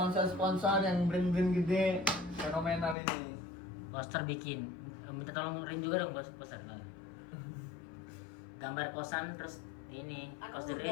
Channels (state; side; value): drops out; right; at 3.0 s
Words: sponsor yang brand-brand gede fenomenal ini. poster bikin minta tolong Rin juga dong poster nah. Gambar kosan terus ini Aku kos The